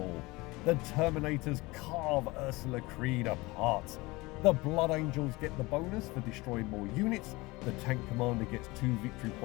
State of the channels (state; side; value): quieter; right; 22.5 dB